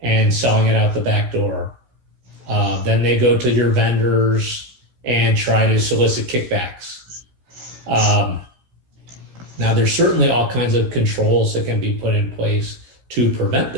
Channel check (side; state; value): left; late; 16 ms